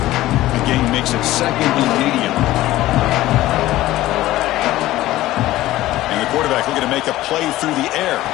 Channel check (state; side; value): quieter; right; 15.9 dB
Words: The game makes it second and medium. Quarterback looking to make a play through the air.